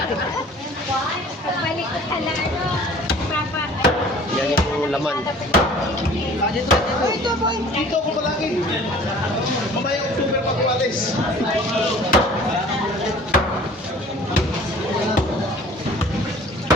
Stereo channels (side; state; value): both; normal; correlation 0.48